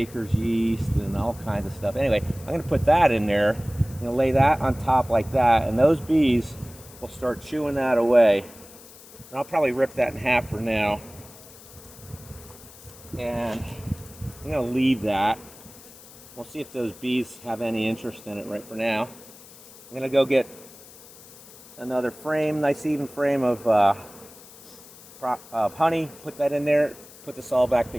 yeast and all kinds of stuff. Anyway, I'm going to put that in there. I'm going to lay that on top like that. And those bees will start chewing that away. And I'll probably rip that in half for now. And I'm going to leave that. We'll see if those bees have any interest in it right for now. I'm going to go get another frame, nice even frame of honey, put that in there, put this all back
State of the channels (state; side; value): noise; left; hiss, 20 dB below the sound